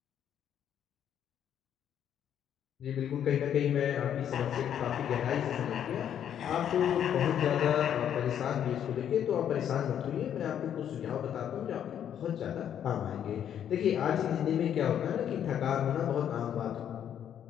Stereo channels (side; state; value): right; quieter; 9.5 dB